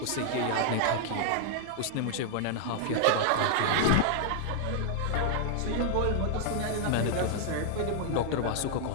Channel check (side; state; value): both; different; correlation 0.00